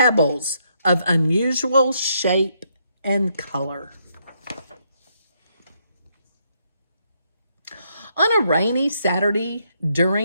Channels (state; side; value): inverted; both; correlation -0.75